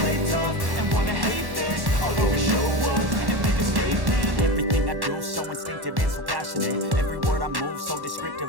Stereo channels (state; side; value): late; left; 1.1 ms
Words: play tough and wanna hate this, I'll always show up and make a statement. Everything I do so instinctive and so passionate. Every word I move so